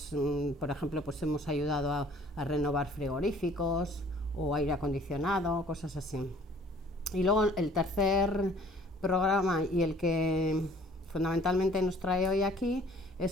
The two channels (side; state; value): both; normal; correlation 0.55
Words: por ejemplo, pues hemos ayudado a renovar frigoríficos o aire acondicionado, cosas así. Y luego el tercer programa y el que fundamentalmente nos trae hoy aquí